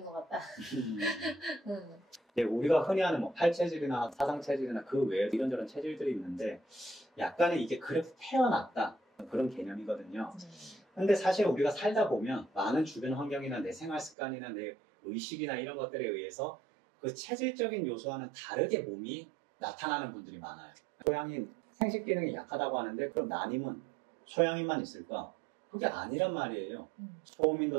것 같다. 네, 우리가 흔히 하는 뭐 팔체질이나 사상체질이나 그 외에 이런저런 체질들이 있는데 약간의 이게 그래도 태어났다 그런 개념이거든요. 근데 사실 우리가 살다 보면 많은 주변 환경이나 내 생활 습관이나 내 의식이나 이런 것들에 의해서 그 체질적인 요소와는 다르게 몸이 나타나는 분들이 많아요. 소양인 생식 기능이 약하다고 하는데 그럼 난임은 소양인만 있을까? 그게 아니란 말이에요.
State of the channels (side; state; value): left; drops out; at 14.2 s